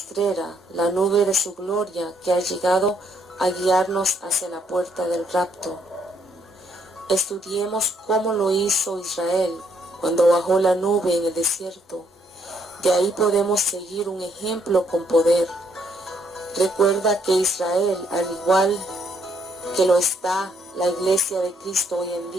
la nube de su gloria que ha llegado a guiarnos hacia la puerta del rapto. Estudiemos cómo lo hizo Israel cuando bajó la nube en el desierto. De ahí podemos seguir un ejemplo con poder. Recuerda que Israel, al igual que lo está la Iglesia de Cristo hoy en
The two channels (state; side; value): normal; both; correlation 0.70